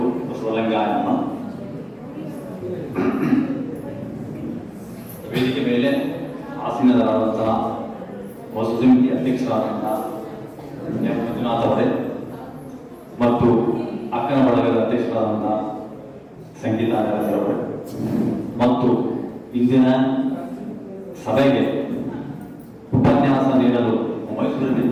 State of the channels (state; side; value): identical; both; correlation 1.00